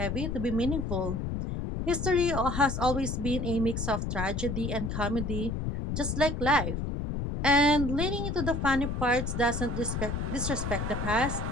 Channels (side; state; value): left; noise; rumble, 2 dB below the sound